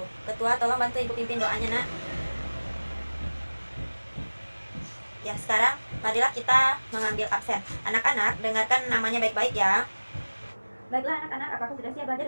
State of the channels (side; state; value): both; inverted; correlation -1.00